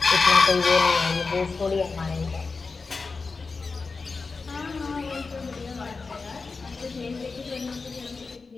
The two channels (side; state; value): right; quieter; 4.3 dB